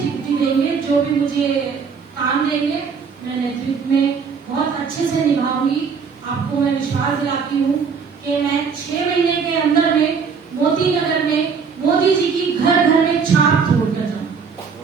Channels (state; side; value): quieter; left; 5.8 dB